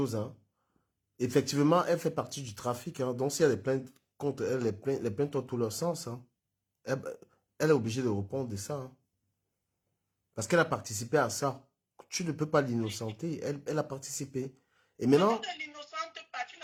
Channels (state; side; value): identical; both; correlation 1.00